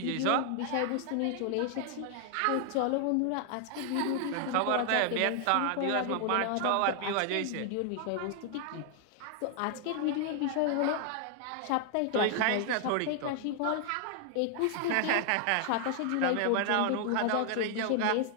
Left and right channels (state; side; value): different; both; correlation 0.00